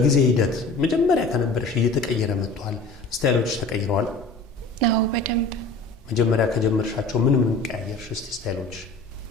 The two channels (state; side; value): quieter; right; 3.2 dB